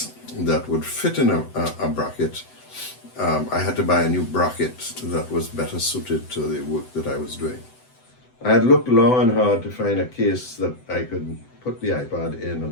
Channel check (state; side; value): late; right; 7.9 ms